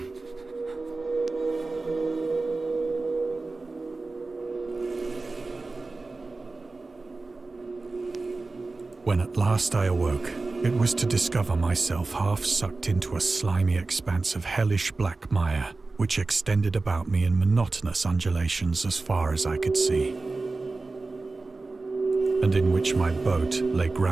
When at last I awoke, it was to discover myself half sucked into a slimy expanse of hellish black mire, which extended about me in monotonous undulations as far as I could see, and in which my boat lay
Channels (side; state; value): left; quieter; 3.5 dB